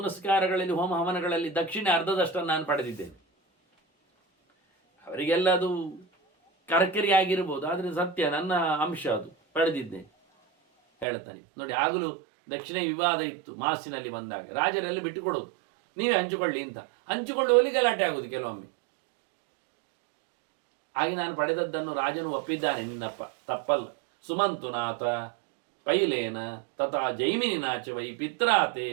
ಹೋಮ ಹವನಗಳಲ್ಲಿ ದಕ್ಷಿಣೆ ಅರ್ಧದಷ್ಟನ್ನು ನಾನು ಪಡೆದಿದ್ದೇನೆ. ಅವರಿಗೆಲ್ಲ ಅದು ಕರ್ಕರಿ ಆಗಿರ್ಬೋದು, ಆದರೆ ಸತ್ಯ ನನ್ನ ಅಂಶ ಅದು ಪಡೆದಿದ್ದೇನೆ ಹೇಳ್ತಾನೆ. ನೋಡಿ, ಆಗಲೂ ದಕ್ಷಿಣ ವಿವಾದ ಇತ್ತು ಮಾಸಿನಲ್ಲಿ ಬಂದಾಗ. ರಾಜರೆಲ್ಲ ಬಿಟ್ಟುಕೊಡೋದು, ನೀವೇ ಹಂಚಿಕೊಳ್ಳಿ ಅಂತ. ಹಂಚಿಕೊಳ್ಳುವಲ್ಲಿ ಗಲಾಟೆ ಆಗೋದು ಕೆಲವೊಮ್ಮೆ. ಹಾಗೆ ನಾನು ಪಡೆದದ್ದನ್ನು ರಾಜನು ಒಪ್ಪಿದ್ದಾನೆ, ನಿನ್ನಪ್ಪ ತಪ್ಪಲ್ಲ. ಸುಮಂತುನಾಥ ಪೈಲೇನ ತಥಾ ಜೈಮಿನಿನಾಚ ವೈ ಪಿತ್ರಾತೆ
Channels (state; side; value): drops out; left; at 11.1 s